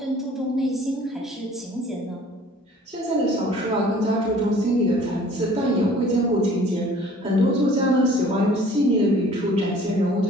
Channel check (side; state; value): both; normal; correlation 0.52